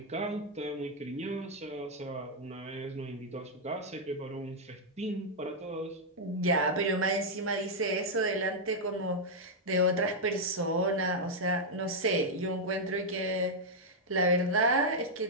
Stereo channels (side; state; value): both; normal; correlation -0.03